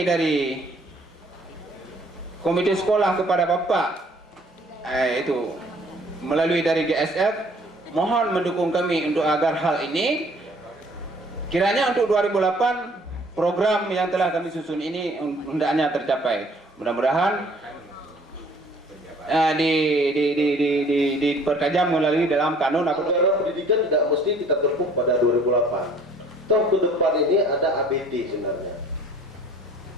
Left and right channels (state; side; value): normal; both; correlation 0.56